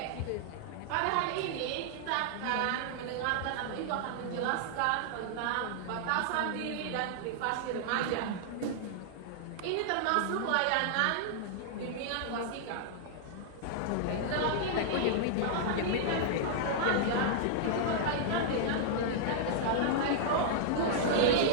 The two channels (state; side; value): different; both; correlation -0.01